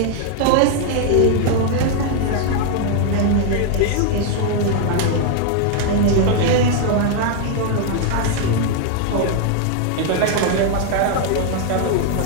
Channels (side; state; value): both; different; correlation 0.00